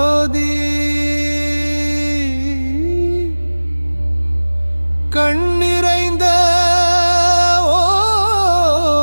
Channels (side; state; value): both; inverted; correlation -1.00